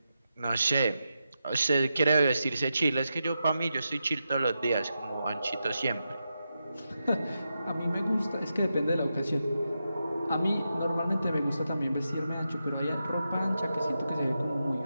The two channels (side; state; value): both; inverted; correlation -0.88